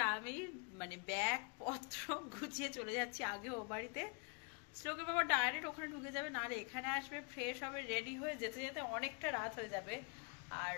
আমি মানে ব্যাগ পত্র গুছিয়ে চলে যাচ্ছি আগে ও বাড়িতে। শ্লোকের বাবা ডাইরেক্ট ওখানে ঢুকে যাবে, না রে এখানে আসবে, ফ্রেশ হবে, রেডি হয়ে যেতে যেতে অনেকটা রাত হয়ে যাবে। আর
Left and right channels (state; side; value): quieter; right; 35.9 dB